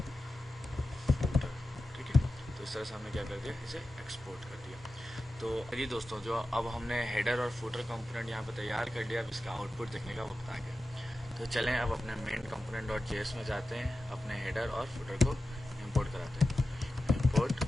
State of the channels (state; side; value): normal; both; correlation 0.93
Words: फुटर, ठीक है। तो इस तरह से हमने क्या कर दिया, इसे एक्सपोर्ट कर दिया। तो जी दोस्तों, जो अब हमने हेडर और फुटर कंपोनेंट यहाँ पे तैयार कर लिया, अब इसका आउटपुट देखने का वक्त आ गया। तो चलें अब अपने मेन component.js में जाते हैं, अपने हेडर और फुटर को इंपोर्ट कराते हैं। Import